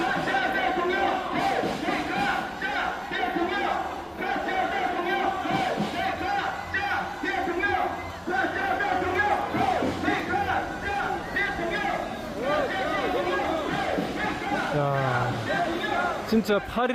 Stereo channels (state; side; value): identical; both; correlation 1.00